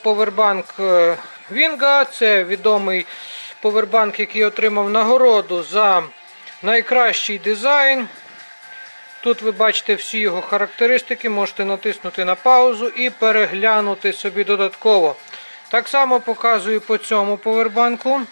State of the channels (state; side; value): inverted; both; correlation -1.00